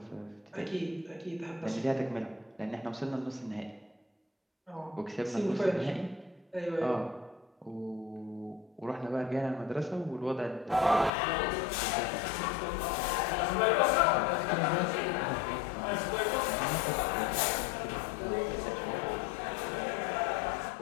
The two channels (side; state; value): right; drops out; at 11.1 s